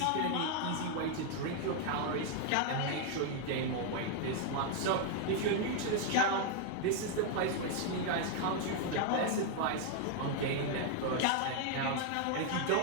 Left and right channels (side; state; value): both; different; correlation 0.00